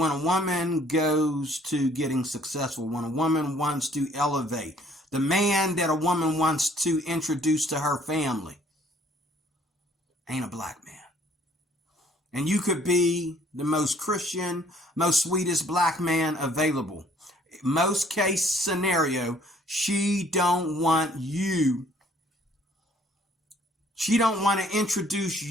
a woman goes to getting successful, when a woman wants to elevate, the man that a woman wants to introduce to her family ain't a black man. And you could be the most Christian, most sweetest black man available. Most case scenario, she don't want you. She don't want to introduce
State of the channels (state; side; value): normal; both; correlation 0.60